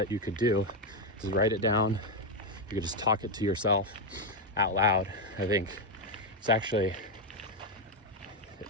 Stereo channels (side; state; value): both; normal; correlation 0.05